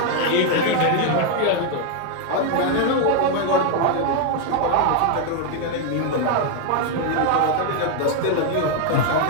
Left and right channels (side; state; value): both; different; correlation 0.01